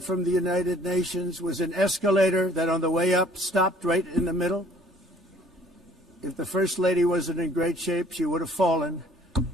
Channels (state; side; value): normal; both; correlation 0.56